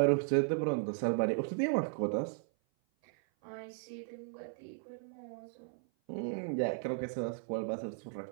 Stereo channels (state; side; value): silent; left; 54 dB below the other